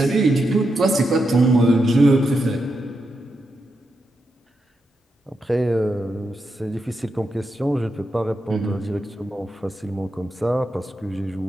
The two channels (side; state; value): both; normal; correlation 0.85